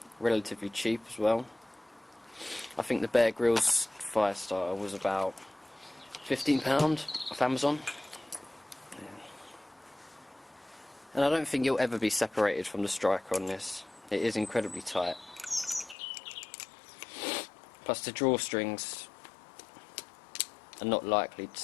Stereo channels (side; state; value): right; drops out; at 16.0 s